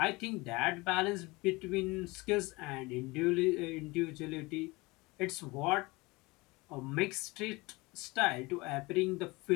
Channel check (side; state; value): right; quieter; 23.6 dB